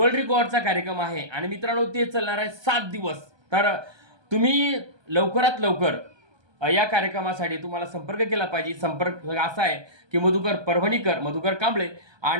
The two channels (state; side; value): late; left; 1.2 ms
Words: रेकॉर्डचा कार्यक्रम आहे आणि मित्रांनो, ते चालणार आहे 7 दिवस. तर तुम्ही लवकरात लवकर या कार्यक्रमासाठी तुम्हाला संपर्क केला पाहिजे. संपर्क असा आहे की मधुकर कांबळे